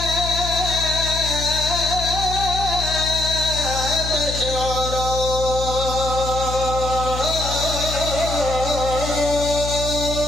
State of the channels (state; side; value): noise; left; hum, 6 dB below the sound